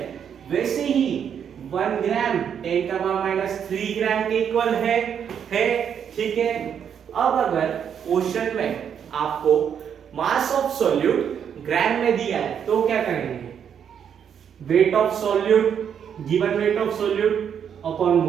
वैसे ही 1 ग्राम 10 का पावर -3 ग्राम के इक्वल है। ठीक है, अब अगर क्वेश्चन में आपको मास ऑफ सोल्यूट ग्राम में दिया है तो क्या करेंगे? Weight of solute, given weight of solute upon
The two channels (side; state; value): left; quieter; 8.1 dB